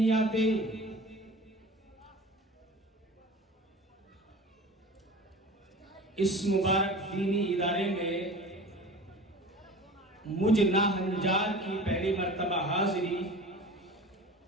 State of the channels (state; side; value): normal; both; correlation 0.38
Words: آتے. اس مبارک دینی ادارے میں مجھ ناہنجار کی پہلی مرتبہ حاضری